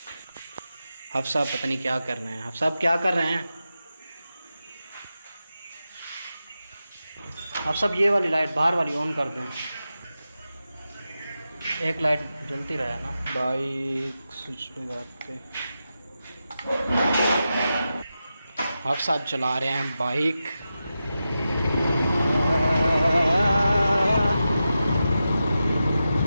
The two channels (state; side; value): inverted; both; correlation -0.91